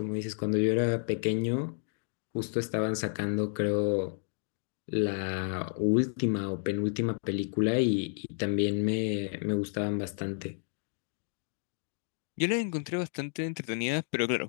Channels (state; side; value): silent; right; digital silence